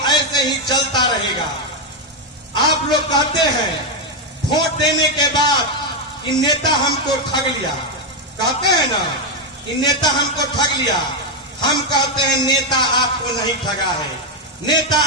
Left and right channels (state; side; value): normal; both; correlation 0.04